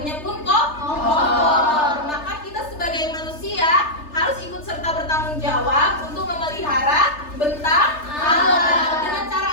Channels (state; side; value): late; right; 3.3 ms